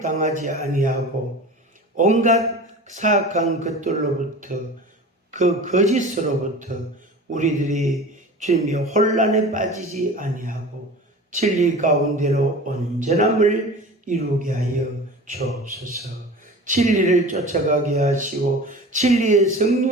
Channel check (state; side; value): normal; both; correlation 0.37